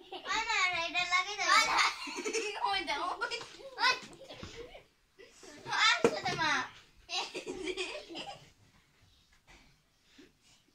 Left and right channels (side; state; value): both; identical; correlation 1.00